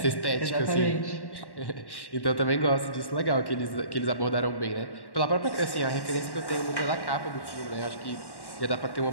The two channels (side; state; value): right; late; 1.1 ms